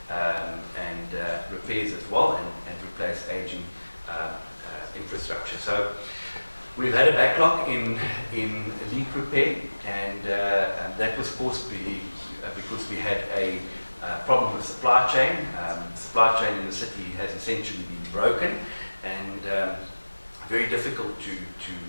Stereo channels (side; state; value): both; inverted; correlation -1.00